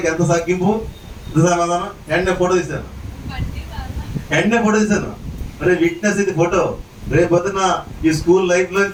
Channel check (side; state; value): both; identical; correlation 1.00